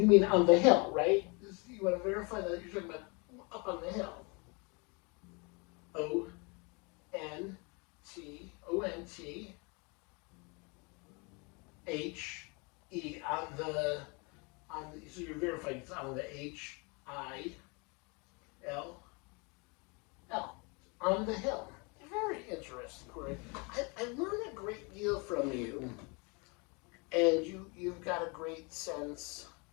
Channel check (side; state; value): right; quieter; 31.0 dB